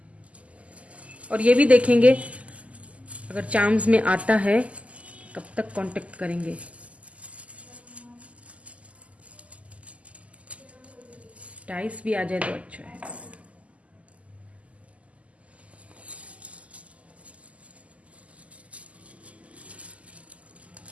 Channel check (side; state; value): left; late; 0.066 ms